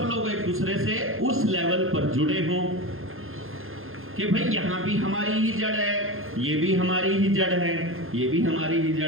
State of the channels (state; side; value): late; left; 0.60 ms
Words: लोग एक दूसरे से उस लेवल पर जुड़े हों कि भाई यहाँ भी हमारी ही जड़ है, ये भी हमारी ही जड़ है, ये भी हमारी ही